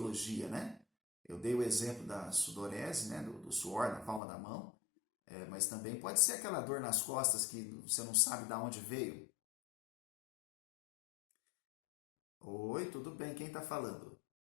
né? Eu dei o exemplo da sudorese, né? Do suor na palma da mão, mas também pode ser aquela dor nas costas que você não sabe de onde veio. Oi, tudo bem? Quem está falando?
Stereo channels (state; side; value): drops out; right; at 4.2 s